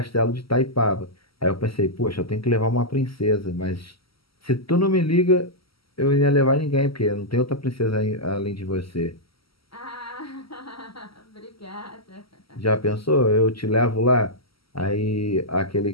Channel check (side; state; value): right; late; 0.75 ms